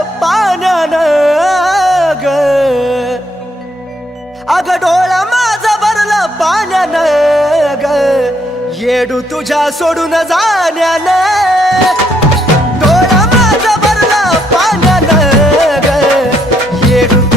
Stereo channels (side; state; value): both; normal; correlation 0.72